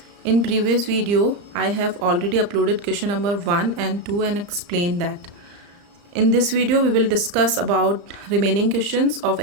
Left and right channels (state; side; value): late; left; 35 ms